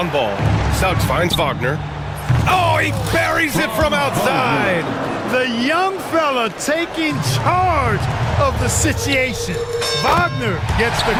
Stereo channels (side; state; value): both; identical; correlation 1.00